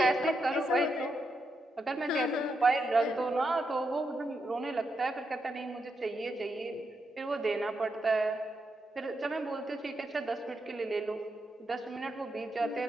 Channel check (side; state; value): both; normal; correlation 0.83